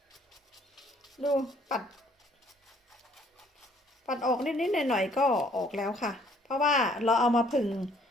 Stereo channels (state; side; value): normal; both; correlation 0.61